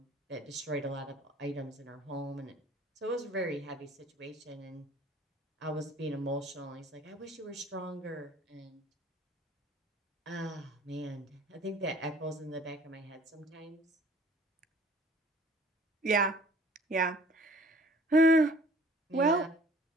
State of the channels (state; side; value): normal; both; correlation 0.52